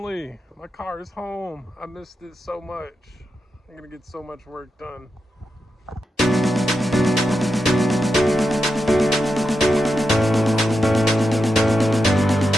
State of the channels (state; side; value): normal; both; correlation 0.87